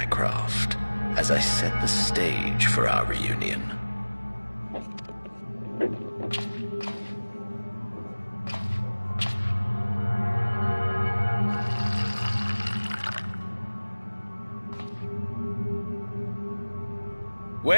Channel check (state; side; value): inverted; both; correlation -1.00